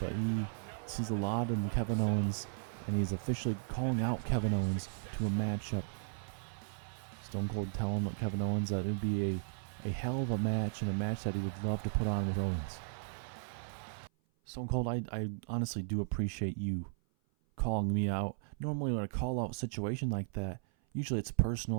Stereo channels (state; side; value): silent; left; 54 dB below the other